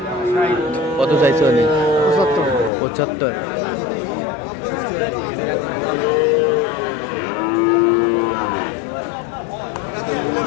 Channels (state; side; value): drops out; right; at 2.7 s